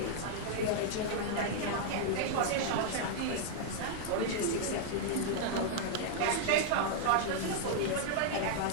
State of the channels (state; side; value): different; both; correlation -0.01